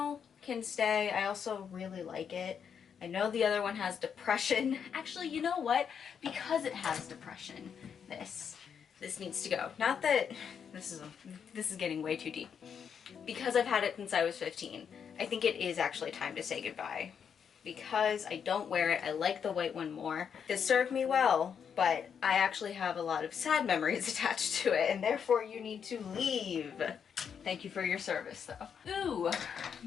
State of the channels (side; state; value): right; quieter; 7.3 dB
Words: can stay. I also really like it. I know the other one has depression. Actually, you know what? Because it has depression, this needs to go. Not that this is getting way too deep. Because I've had it since I was 15, I think it is actually time to say goodbye. Because I don't wear it, I like the white one more. It served me well, but I actually have a lot of sad memories attached to it, and therefore you need to leave. Thank you for your service, though. Ooh,